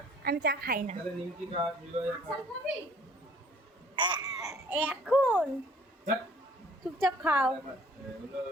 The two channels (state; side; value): normal; both; correlation 0.56